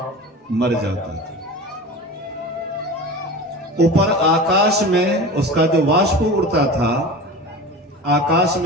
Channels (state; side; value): normal; both; correlation 0.33